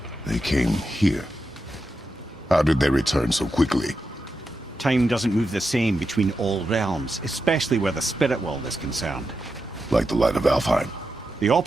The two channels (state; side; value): normal; both; correlation 0.88